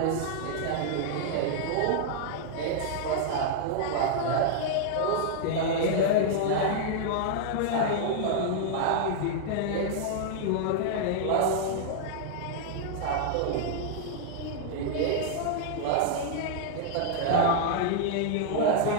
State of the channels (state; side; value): different; both; correlation -0.01